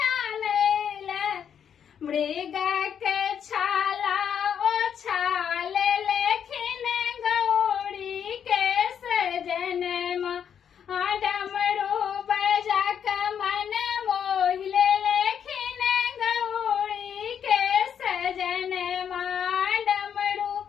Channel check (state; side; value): quieter; right; 8.2 dB